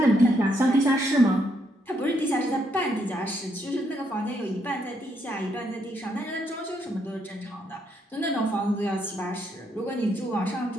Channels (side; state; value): both; normal; correlation 0.75